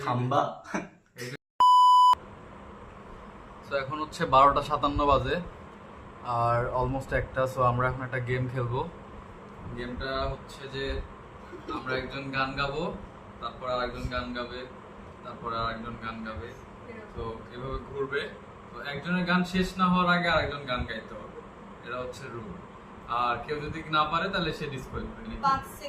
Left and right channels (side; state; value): both; identical; correlation 1.00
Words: খাম্বা। তো এখন হচ্ছে 12:57 বাজে আর অলমোস্ট একটা। সো আমরা এখন একটা গেম খেলবো। গেমটা হচ্ছে যে আমরা একজন গান গাবো, তারপর আর একজন গান গাবে, তারপর আর একজন গান গাবে। তো এভাবে ঘুরবে। তো একজনের গান শেষ না হওয়ার আগে আরেকজন গান গাইতে হবে, এটা হচ্ছে রুল। আর কেউ যদি না পারে তাহলে সে ডিসকোয়ালিফাই। 5